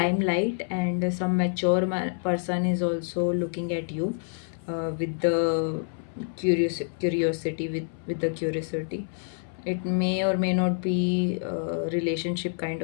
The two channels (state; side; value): silent; right; 60 dB below the other